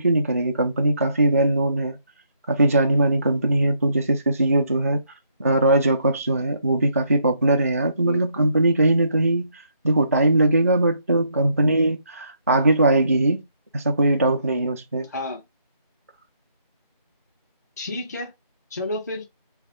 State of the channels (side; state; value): both; inverted; correlation -0.72